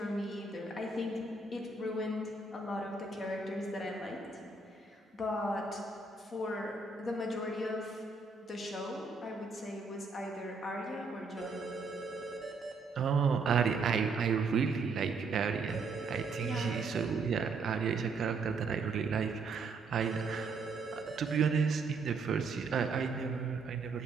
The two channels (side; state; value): left; quieter; 4.1 dB